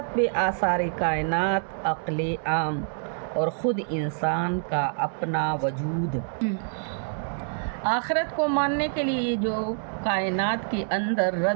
پہ آثار کائنات، عقل عام اور خود انسان کا اپنا وجود۔ آخرت کو ماننے کے لیے جو کائنات کے اندر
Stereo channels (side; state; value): left; silent; digital silence